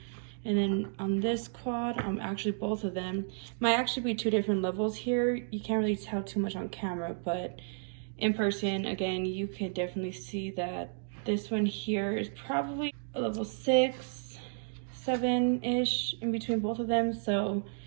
And then on this quad, actually both of them might actually be 2 different levels here. You can't really tell too much on camera, but in person, again, you can definitely see that this one here is probably a level 6, 7-ish in between both of them. So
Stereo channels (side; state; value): left; silent; digital silence